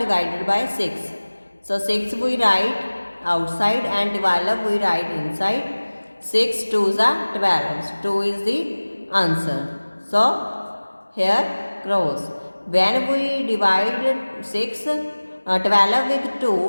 divided by 6. So 6 we write outside and 12 we write inside. 6 2s are 12. 2 is the answer. So here cross. When we divide 12 with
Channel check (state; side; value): inverted; both; correlation -1.00